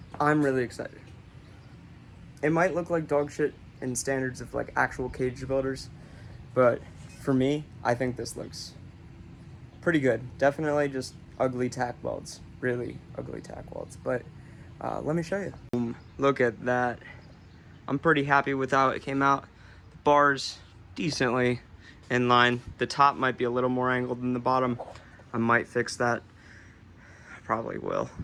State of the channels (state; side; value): identical; both; correlation 1.00